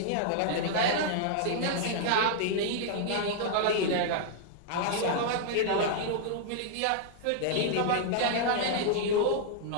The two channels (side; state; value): both; different; correlation -0.01